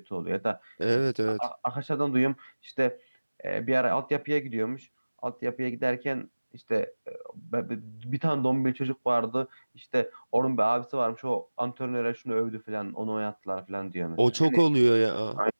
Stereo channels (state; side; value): inverted; both; correlation -1.00